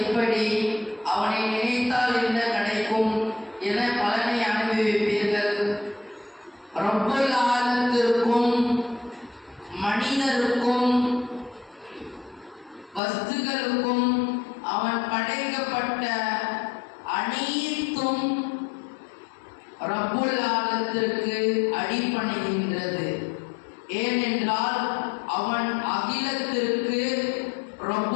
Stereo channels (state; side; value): drops out; right; at 13.0 s